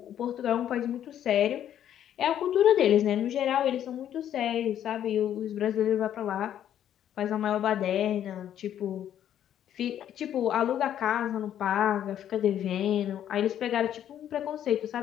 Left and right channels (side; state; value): right; quieter; 10.5 dB